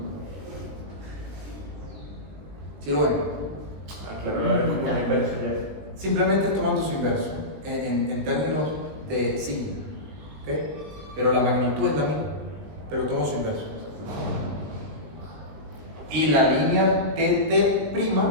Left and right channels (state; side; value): late; left; 20 ms